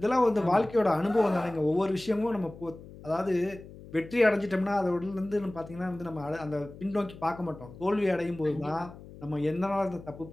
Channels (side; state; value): left; noise; hum, 17 dB below the sound